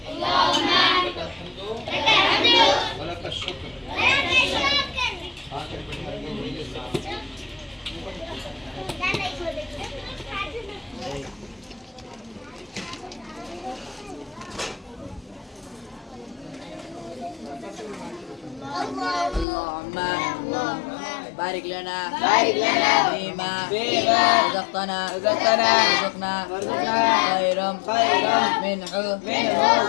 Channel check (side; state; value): right; drops out; at 19.5 s